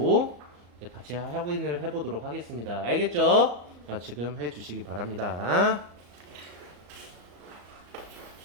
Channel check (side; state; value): left; late; 34 ms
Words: 같이 확인을 해보도록 하겠습니다. 알겠죠? 지금 해주시기 바랍니다.